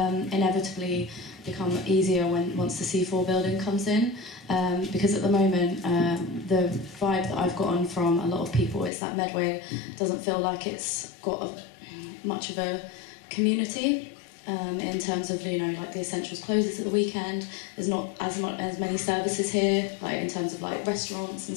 become easier once the C4 building comes in, because at the moment the vibe that I've gotten from a lot of people is that Medway doesn't feel like it's got much of a community. In terms of like the Essentials closes at the weekend, there's not as many services here, like in terms of like restaurants and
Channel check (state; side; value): drops out; right; at 8.9 s